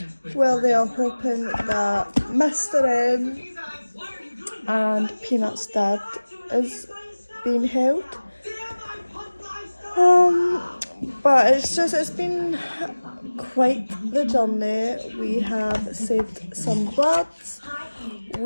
where they are hoping that Mr. M and Peanut's dad is being held. But it's been quite the journey. We have saved some birds,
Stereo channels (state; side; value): inverted; both; correlation -1.00